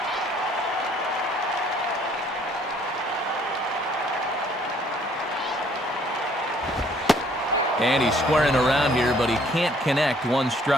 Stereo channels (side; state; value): both; normal; correlation 0.62